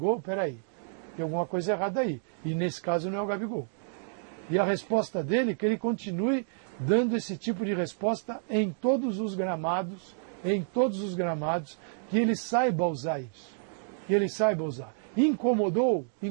peraí, tem alguma coisa errada aí. E nesse caso não é o Gabigol. E a resposta dele é que ele continue dando esse tipo de resposta em todos os gramados, que ele saiba usar isso. Que ele saiba usar. Incomodou?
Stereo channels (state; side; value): silent; left; digital silence